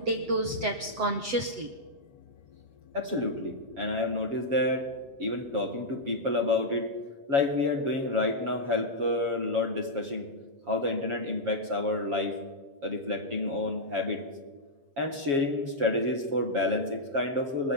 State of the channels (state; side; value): late; left; 7.8 ms